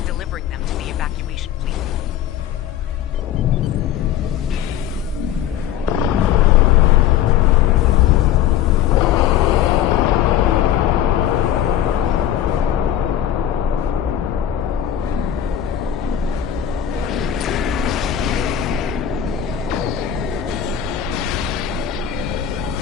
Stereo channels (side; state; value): right; quieter; 10.5 dB